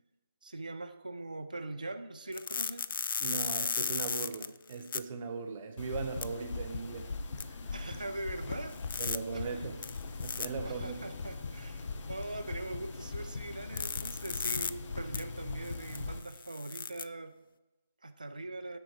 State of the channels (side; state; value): both; inverted; correlation -0.69